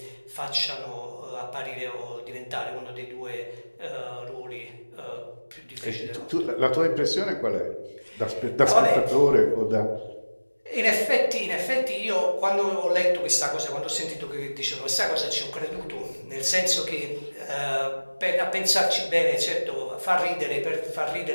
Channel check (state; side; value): inverted; both; correlation -1.00